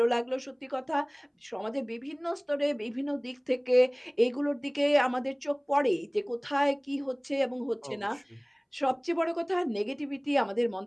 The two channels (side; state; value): both; identical; correlation 1.00